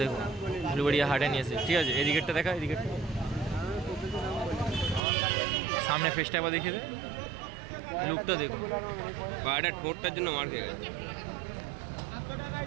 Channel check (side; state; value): left; drops out; at 5.0 s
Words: দেখুন উলুবেড়িয়া হাটে নিয়েছে। ঠিক আছে, এদিকেরটা দেখা, এদিকেরটা সামনে ফেসটা একবার দেখিয়ে দে, লুকটা দেখুন। পায়রাটা ঠোঁটটার জন্য মার খেয়ে গেছে।